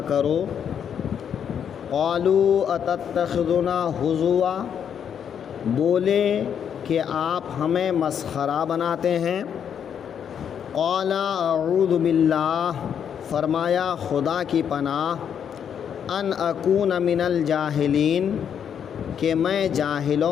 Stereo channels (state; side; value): quieter; right; 8.2 dB